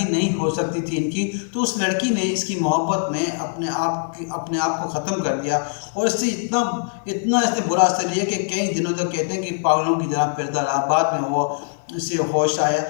नहीं हो सकती थी इनकी। तो उस लड़की ने इसकी मोहब्बत में अपने आप को ख़त्म कर दिया, और इससे इतना इसने बुरा असर लिया कि कई दिनों तक कहते हैं कि पागलों की तरह फिरता रहा। बाद में वो इसे होश आया।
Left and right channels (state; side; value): silent; right; 64 dB below the other